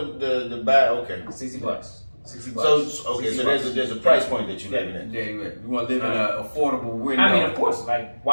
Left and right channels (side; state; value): both; inverted; correlation -1.00